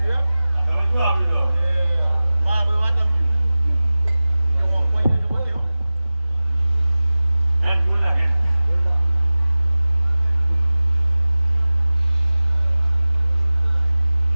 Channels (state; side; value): inverted; both; correlation -0.97